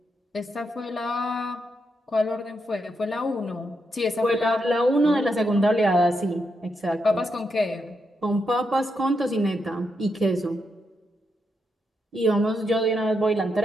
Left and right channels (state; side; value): normal; both; correlation 0.82